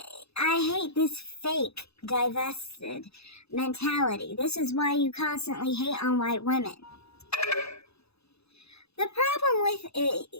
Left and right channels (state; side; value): late; right; 0.79 ms